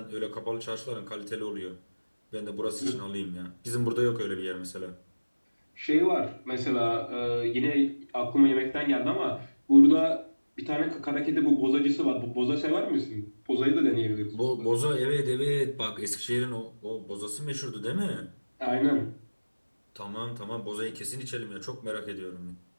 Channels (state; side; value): inverted; both; correlation -1.00